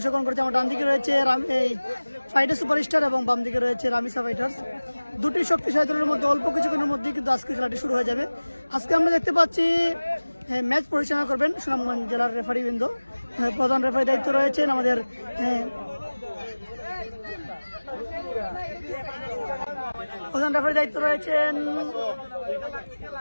করেছে, আমার ডান দিকে রয়েছে এই ফাইটার সুপারস্টার এবং বাম দিকে রয়েছে রামিসা ফাইটার্স। দুটি শক্তিশালী দলের মধ্যে অল্প কিছুক্ষণের মধ্যেই কিন্তু আজকে খেলাটি শুরু হয়ে যাবে। আজকে আমরা দেখতে পাচ্ছি ম্যাচ পরিচালনা করবেন সুনামগঞ্জ জেলার রেফারিবৃন্দ। প্রধান রেফারি দায়িত্ব রয়েছেন আমাদের প্রধান রেফারি দায়িত্ব রয়েছেন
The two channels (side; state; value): both; inverted; correlation -1.00